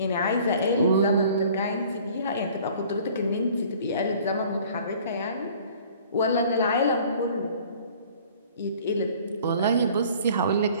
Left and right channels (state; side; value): inverted; both; correlation -0.51